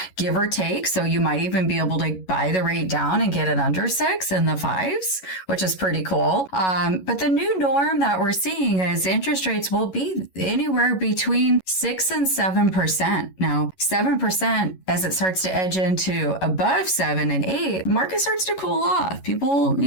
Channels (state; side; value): late; right; 11 ms